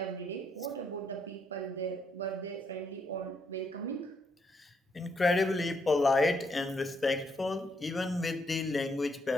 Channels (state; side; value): normal; both; correlation 0.75